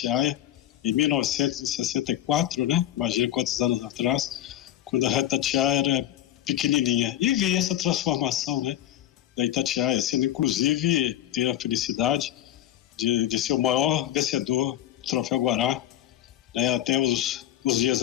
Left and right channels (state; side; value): quieter; right; 12.5 dB